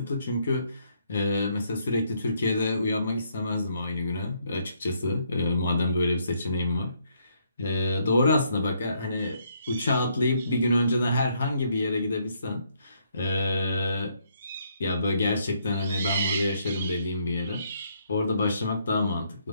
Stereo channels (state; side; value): inverted; both; correlation -0.72